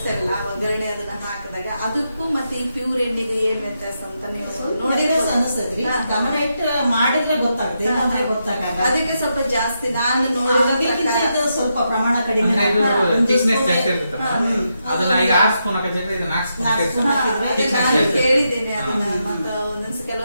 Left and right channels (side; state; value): both; inverted; correlation -0.84